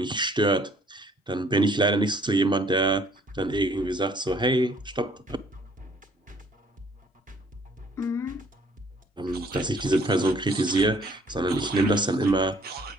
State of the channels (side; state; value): both; normal; correlation 0.59